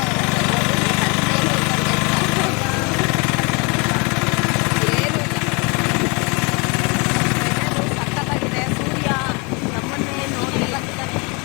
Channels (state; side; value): quieter; right; 30.6 dB